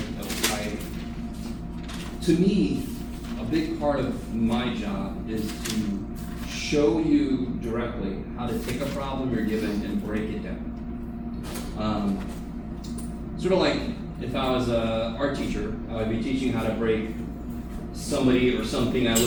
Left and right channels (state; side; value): identical; both; correlation 1.00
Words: To me, a big part of my job is to show you directly how to take a problem you're given and break it down. Sort of like if I was an art teacher, I would be teaching how to break somebody or something I